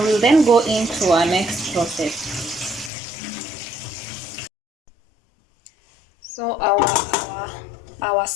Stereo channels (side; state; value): right; drops out; at 2.9 s